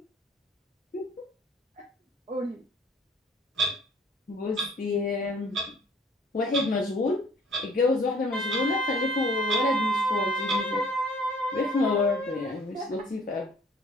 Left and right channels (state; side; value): normal; both; correlation 0.55